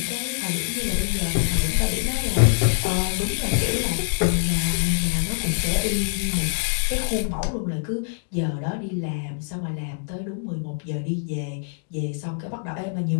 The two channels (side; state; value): right; silent; digital silence